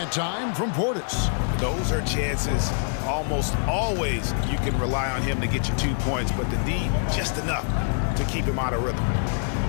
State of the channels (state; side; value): silent; right; 62 dB below the other